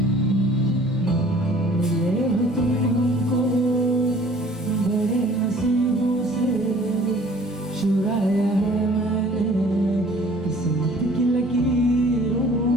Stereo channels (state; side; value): normal; both; correlation 0.53